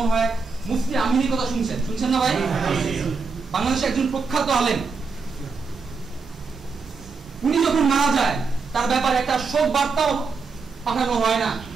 হয় মুফতি আমিনীর কথা শুনছেন না ভাই? বাংলাদেশের একজন প্রখ্যাত আলেম, উনি যখন মারা যায় তার ব্যাপারে একটা শোক বার্তাও পাঠানো হয় না।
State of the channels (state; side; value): quieter; left; 4.7 dB